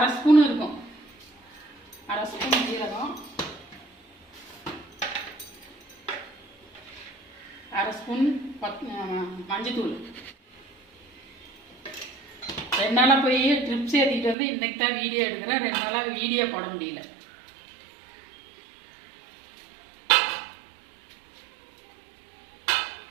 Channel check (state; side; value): drops out; left; at 14.4 s